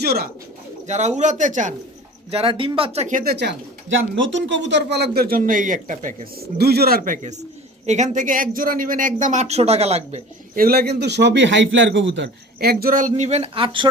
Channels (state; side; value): normal; both; correlation 0.41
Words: জোড়া। যারা উড়াতে চান, যারা ডিম বাচ্চা খেতে চান, যান নতুন কবুতর পালকদের জন্য এই একটা প্যাকেজ, 2 জোড়ার প্যাকেজ। এখান থেকে এক জোড়া নেবেন একদম 800 টাকা লাগবে। এগুলা কিন্তু সবই হাই ফ্লায়ার কবুতর। এক জোড়া নেবেন 800